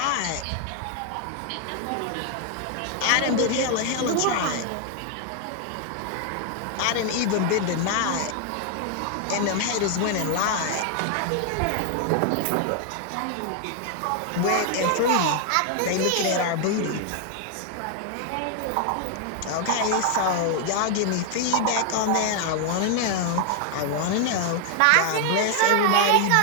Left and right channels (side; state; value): both; different; correlation 0.00